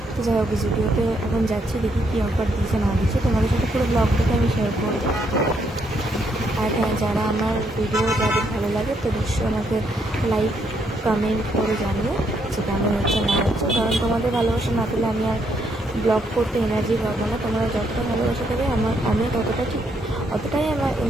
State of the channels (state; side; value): normal; both; correlation 0.74